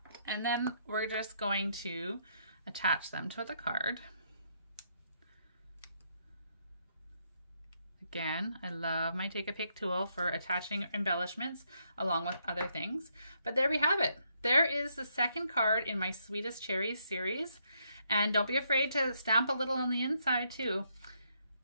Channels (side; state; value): both; inverted; correlation -0.75